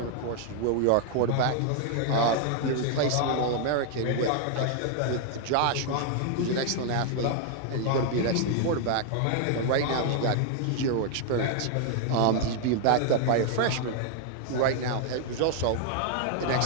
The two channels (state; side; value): different; both; correlation 0.00